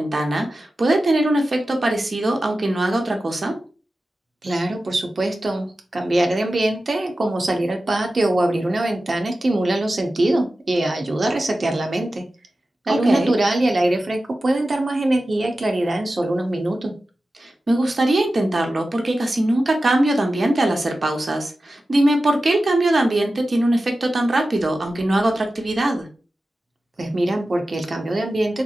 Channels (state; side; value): normal; both; correlation 0.94